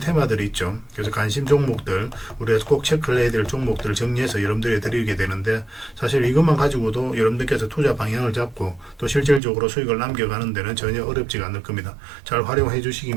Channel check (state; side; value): drops out; left; at 9.4 s